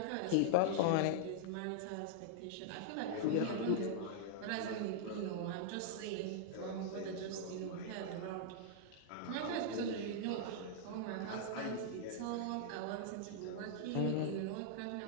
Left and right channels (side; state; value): both; different; correlation -0.02